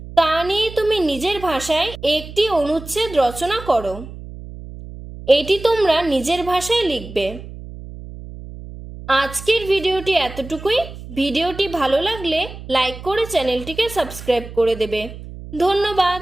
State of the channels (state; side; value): noise; right; hum, 13 dB below the sound